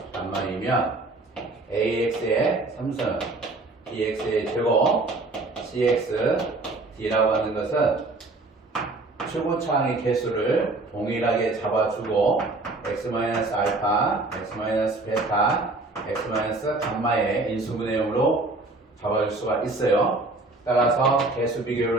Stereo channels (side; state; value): left; quieter; 3.1 dB